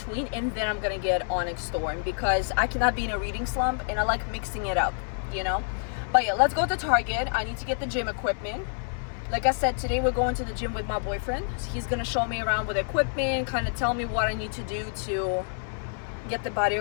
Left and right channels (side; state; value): right; silent; 58 dB below the other